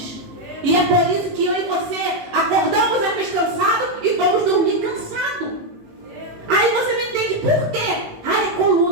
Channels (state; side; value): late; left; 18 ms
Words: E é por isso que eu e você acordamos às vezes cansados e vamos dormir cansados. Aí você não entende por quê. Ai, é